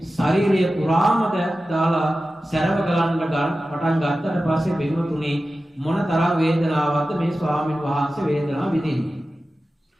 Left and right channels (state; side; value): normal; both; correlation 0.94